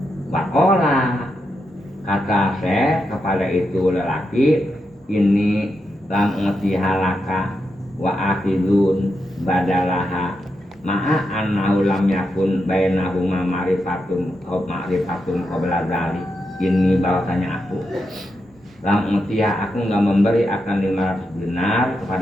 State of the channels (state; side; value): normal; both; correlation 0.85